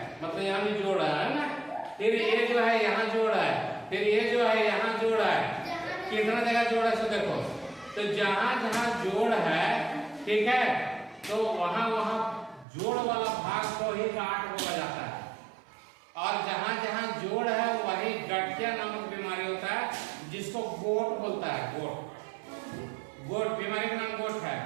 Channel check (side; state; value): left; drops out; at 12.7 s